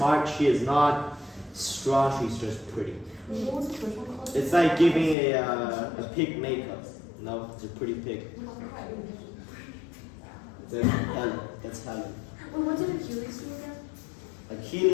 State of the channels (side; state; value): right; drops out; at 5.2 s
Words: she is not strong, she's just pretty. It's like giving a pig makeup. No, it's a pretty pig. It's like Helen. That's Helen. Well, what did Achilles do again?